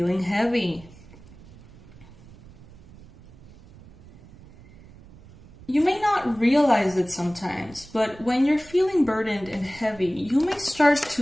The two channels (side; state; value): right; noise; rumble, 22 dB below the sound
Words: heavy? You may not realize it sometimes, but when you're feeling burdened and heavy, you may start